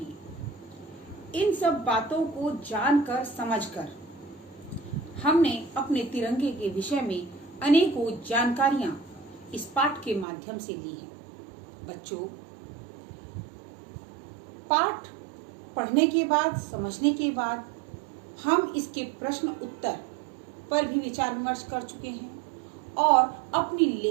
इन सब बातों को जानकर समझकर हमने अपने तिरंगे के विषय में अनेकों जानकारियां इस पाठ के माध्यम से ली हैं। बच्चों, पाठ पढ़ने के बाद, समझने के बाद हम इसके प्रश्न उत्तर पर भी विचार विमर्श कर चुके हैं और अपनी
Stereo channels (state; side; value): drops out; left; at 10.2 s